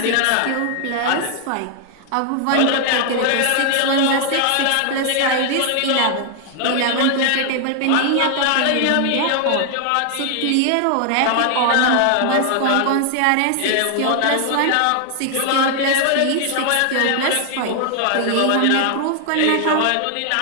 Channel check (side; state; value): both; different; correlation 0.00